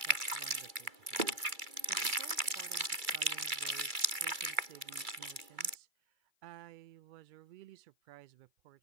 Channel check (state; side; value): late; left; 2.3 ms